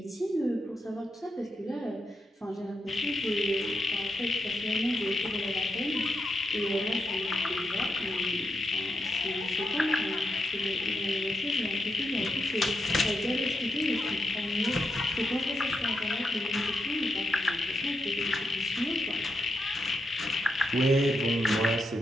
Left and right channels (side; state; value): both; normal; correlation 0.84